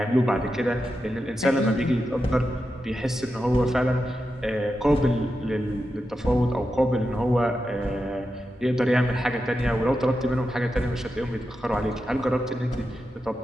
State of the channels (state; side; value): normal; both; correlation 0.89